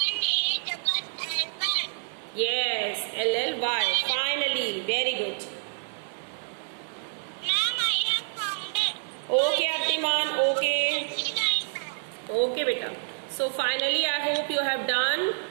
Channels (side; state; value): left; silent; 60 dB below the other